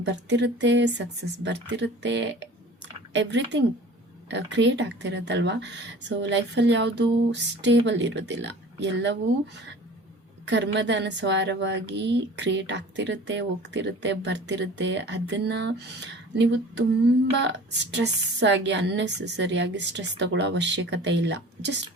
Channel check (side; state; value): both; normal; correlation 0.43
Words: ಬರ್ತಿರುತ್ತೆ, ಸಕ್ಸಸ್ ಬರ್ತಿರುತ್ತೆ, ಎವ್ರಿಥಿಂಗ್ ಕ್ರಿಯೇಟ್ ಆಗ್ತಿರುತ್ತಲ್ವ. ಸೊ ಲೈಫಲ್ಲಿ ಯಾವುದು ಸ್ಟೇಬಲ್ ಇರೋದಿಲ್ಲ, ಎಲ್ಲವೂ ಕರ್ಮದ ಅನುಸಾರವಾಗಿ ಕ್ರಿಯೇಟ್ ಆಗ್ತಿರುತ್ತೆ, ಹೋಗ್ತಿರುತ್ತೆ, ಬರ್ತಿರುತ್ತೆ. ಅದನ್ನು ನೀವು ತುಂಬ ಸ್ಟ್ರೆಸ್ ಆಗಿ ಅನ್ನೆಸೆಸರಿಯಾಗಿ ಸ್ಟ್ರೆಸ್ ತಗೊಳ್ಳೋ ಅವಶ್ಯಕತೆ ಇಲ್ಲ. Just